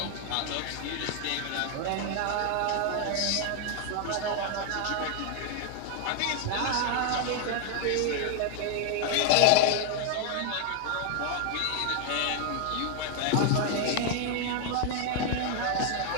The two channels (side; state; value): both; different; correlation 0.00